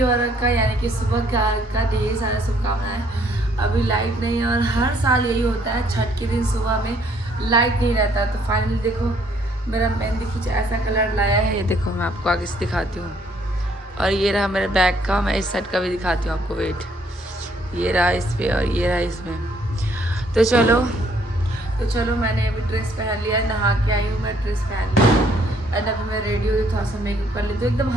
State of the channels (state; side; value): normal; both; correlation 0.65